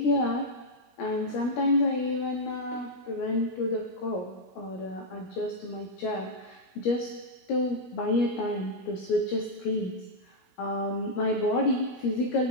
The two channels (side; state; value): right; late; 17 ms